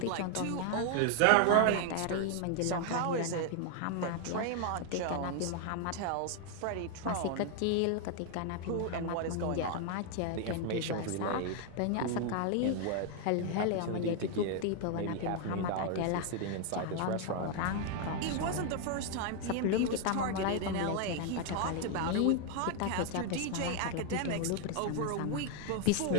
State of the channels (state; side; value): different; both; correlation 0.00